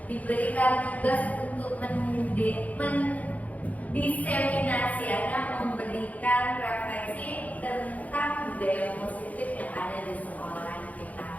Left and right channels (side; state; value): right; late; 0.073 ms